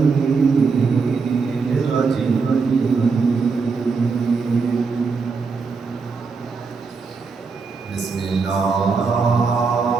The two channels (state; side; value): quieter; left; 4.9 dB